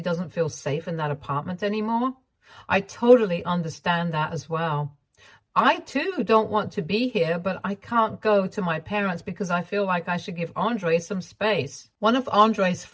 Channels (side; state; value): both; identical; correlation 1.00